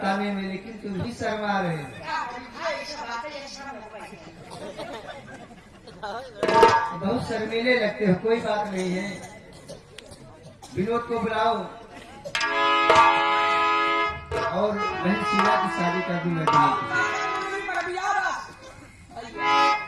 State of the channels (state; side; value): identical; both; correlation 1.00